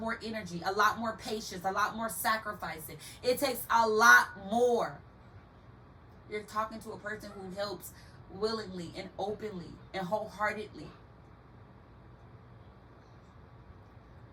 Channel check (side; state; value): both; identical; correlation 1.00